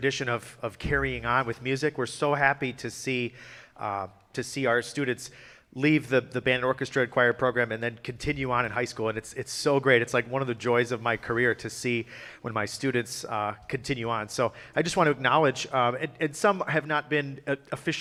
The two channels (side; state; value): both; identical; correlation 1.00